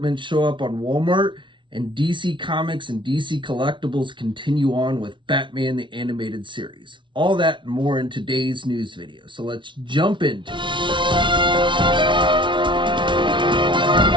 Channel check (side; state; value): left; late; 0.24 ms